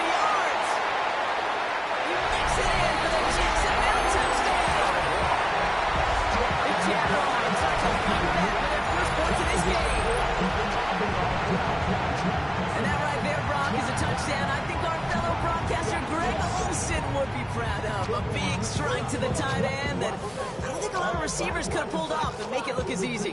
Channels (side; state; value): both; identical; correlation 1.00